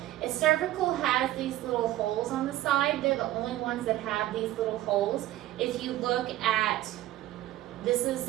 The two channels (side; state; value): left; quieter; 14.8 dB